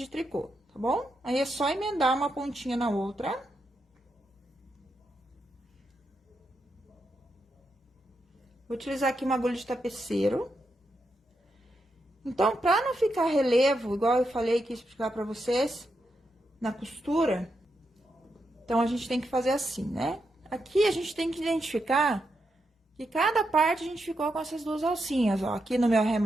tricô, tá bom? Aí, é só emendar uma pontinha na outra. Vou utilizar aqui uma agulha de tapeceiro. Então, pra não ficar relevo, igual eu falei que ia explicar pra vocês, na costura, então, a gente tem que fazer assim, né? Aqui, a gente tem que identificar que cada parte a gente ficou com essas duas alcinhas, ó. Aqui no meu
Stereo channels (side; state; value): both; normal; correlation 0.84